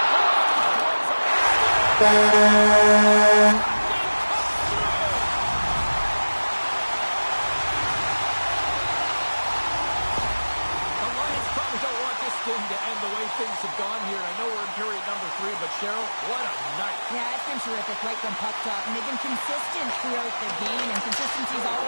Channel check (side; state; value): both; inverted; correlation -1.00